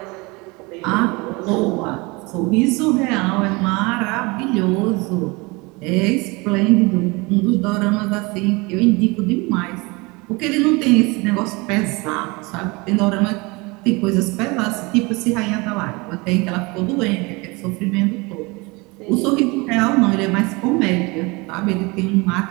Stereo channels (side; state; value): left; quieter; 26.0 dB